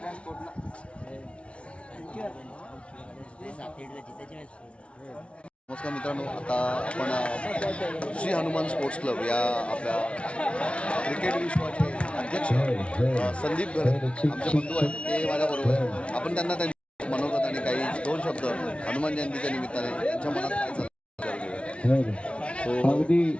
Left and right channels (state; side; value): late; right; 0.060 ms